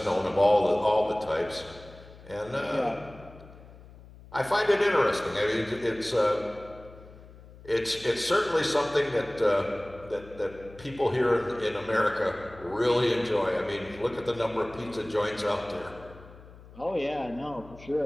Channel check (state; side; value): noise; left; hum, 20 dB below the sound